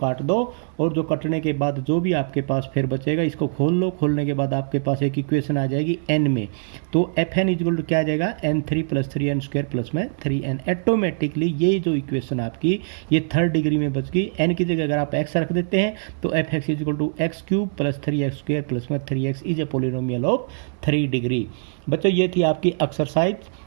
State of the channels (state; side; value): silent; left; digital silence